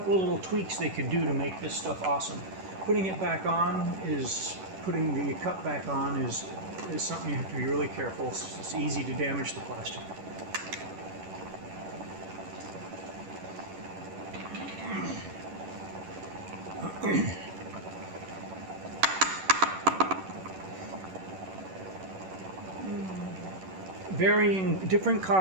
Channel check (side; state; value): left; late; 11 ms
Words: of little tweaks they could do to make this stuff awesome. Putting the cup back on is something you have to be really careful. It's easy to damage the plastic. different